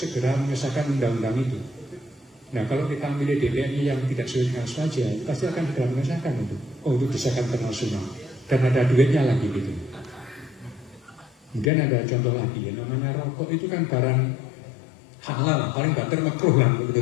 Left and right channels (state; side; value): drops out; right; at 11.7 s